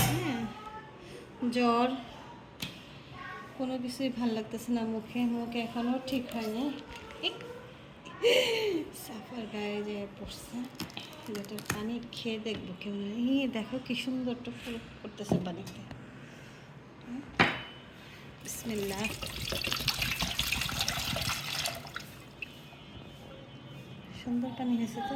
হ্যাঁ, জ্বর, কোনো কিছুই ভাল লাগতেছে না, মুখে মুখে এখনও ঠিক হয়নি। সাফার গায়ে যে পড়ছে, যেটার পানি খেয়ে দেখবো কেমন। দেখো কি সুন্দর টুক করতেছে পানিতে। বিসমিল্লাহ। সুন্দর পানি হয়েছে তো।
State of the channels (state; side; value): identical; both; correlation 1.00